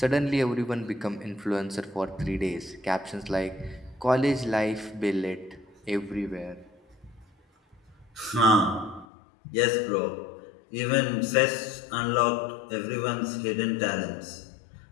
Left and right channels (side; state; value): right; drops out; at 9.1 s